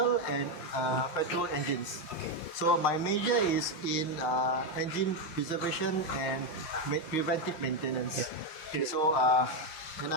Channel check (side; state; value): right; late; 5.7 ms